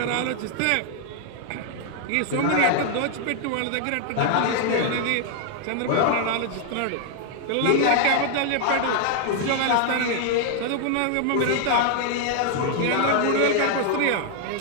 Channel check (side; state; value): both; different; correlation 0.00